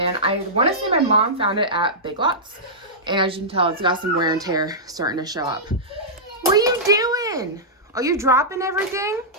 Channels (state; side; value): normal; both; correlation -0.13